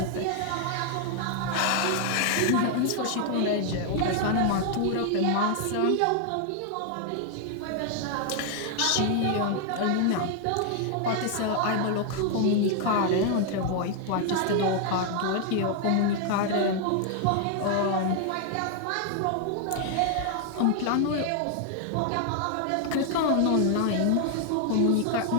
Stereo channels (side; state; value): both; different; correlation 0.00